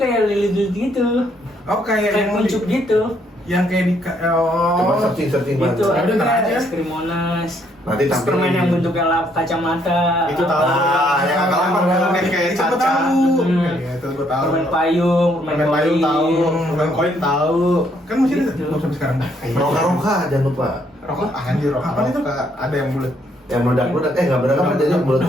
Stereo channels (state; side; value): normal; both; correlation 0.70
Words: lili-lili gitu. Oh, kayak Kayak kuncup gitu. yang kayak di Coba searching Pak. Itu Ada ntar aja. es krim Monas. Nanti Terus tampilin. permen yang bentuknya Itu kacamata. tahu. yang agak-agak kayak Itu caca. tahu. Iya, itu gua tahu. Permen payung, Permen payung tahu, permen koin tahu. Kan masih ada Gitu. belum sampai sekarang. Roka jangan lupa. Rokok anjir rokok. Apa itu? Ada yang bulat. Yang meledak-meledak, nggak meledak apa jadi yang